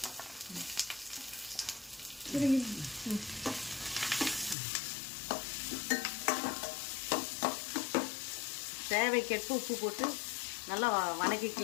தேவைக்கேற்ப உப்பு போட்டு நல்லா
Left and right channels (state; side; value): drops out; right; at 4.5 s